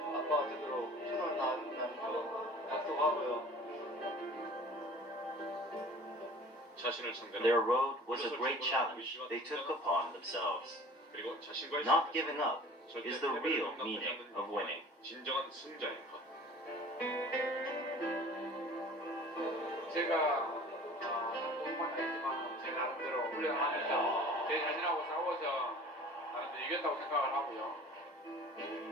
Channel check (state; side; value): normal; both; correlation 0.45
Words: 아빠가 되도록 최선을 다한다는 거 약속하고요. 자신을 상대로 Their road was a great challenge they took upon themselves. 그리고 자신과의 Not giving up 절대 is the real 패배를 meaning 용납하지 of winning. 진정한 승자의 것. 제가 공부만 했지만 제 나름대로 훈련하면서 제 자신하고 싸워서 나름대로 이겼다고 생각을 하고요.